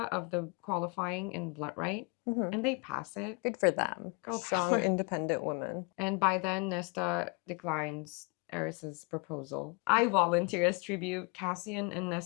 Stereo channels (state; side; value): quieter; right; 31.5 dB